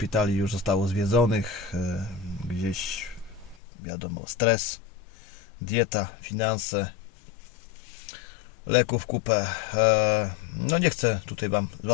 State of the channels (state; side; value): drops out; right; at 3.6 s